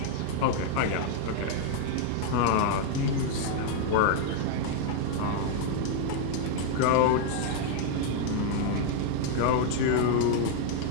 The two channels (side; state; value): both; different; correlation 0.00